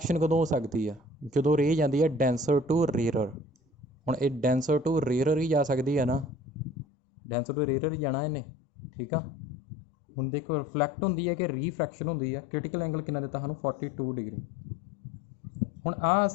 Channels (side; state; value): right; drops out; at 6.8 s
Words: कदों हो सकती है, जो रे जाती है डेंसर टू रेयर। हुण ये डेंसर टू रेयर ही जा सकती है ना, डेंसर टू रेयर ही जाना इन्हें। ठीक है, हुण देखो रिफ्लैक्ट होंदी है कि रिफ्रैक्शन होंदी है। क्रिटिकल एंगल कितना दिता सानूं 42 डिग्री। हुण